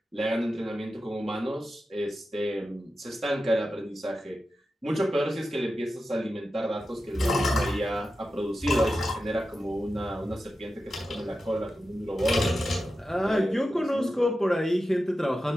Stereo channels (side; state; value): both; normal; correlation 0.91